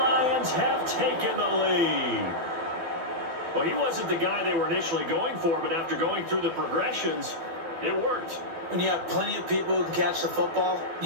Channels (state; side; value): late; left; 12 ms